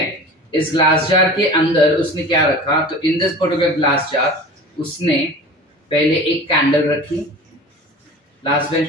इस ग्लास जार के अंदर उसने क्या रखा, तो इन दिस पर्टिकुलर ग्लास जार उसने पहले एक कैंडल रखी. लास्ट बेंच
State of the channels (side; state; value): both; normal; correlation 0.38